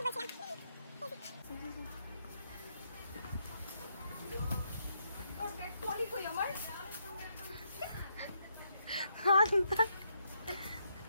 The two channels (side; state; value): both; inverted; correlation -0.77